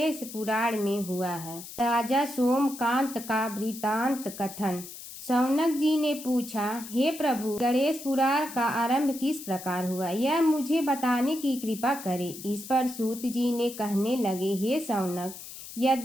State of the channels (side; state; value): left; noise; hiss, 13 dB below the sound